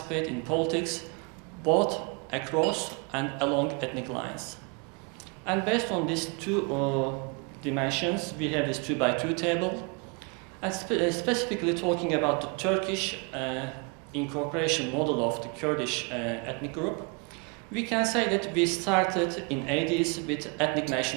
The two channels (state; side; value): quieter; left; 33.3 dB